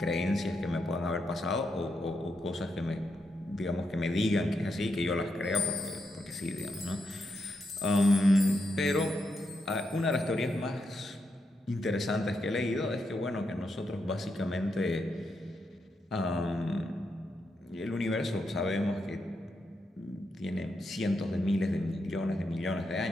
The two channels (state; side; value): normal; both; correlation 0.83